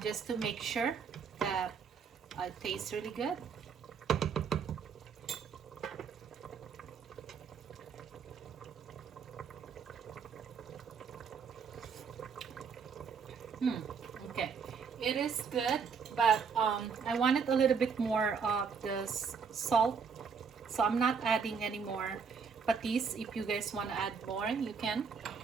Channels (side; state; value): left; quieter; 6.0 dB